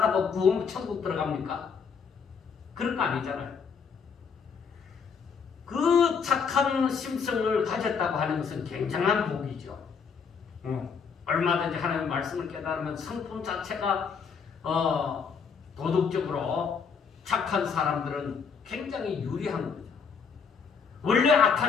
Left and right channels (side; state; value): right; quieter; 6.1 dB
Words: 구원 천국 들어갑니까? 그런 거 아니잖아요. 그 착한 심성을 가졌다고 하는 것은 굉장한 복이죠. 얼마든지 하나님의 말씀을 깨달으면 성품 자체가 도덕적으로 착한 사람들은 굉장히 유리한 거죠. 원래